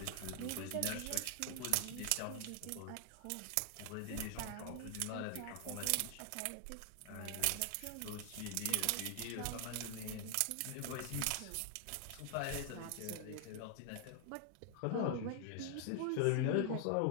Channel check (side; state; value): both; different; correlation 0.00